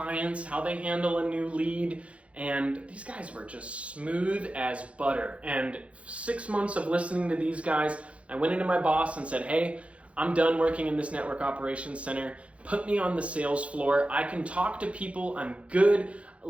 how they handle a new lead. And these guys were just smooth as butter. And 6 months of listening to these guys, I went into my boss and said, hey, I'm done working in this network operations center. Put me on the sales floor. I can talk to people. I'm good.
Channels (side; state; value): left; late; 0.062 ms